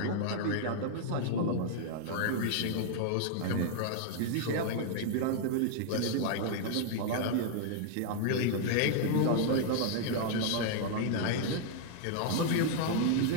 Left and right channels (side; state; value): both; different; correlation -0.01